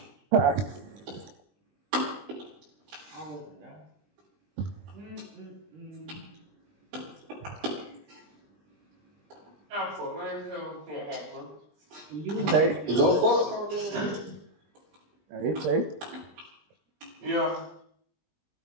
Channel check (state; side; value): late; left; 20 ms